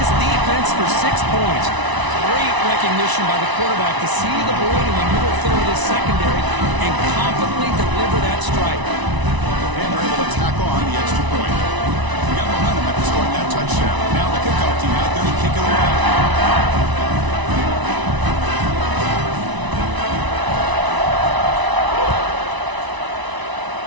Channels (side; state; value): left; late; 1.0 ms